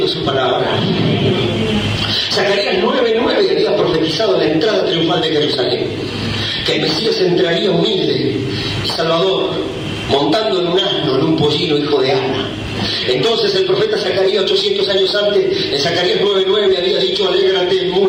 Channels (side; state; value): both; identical; correlation 1.00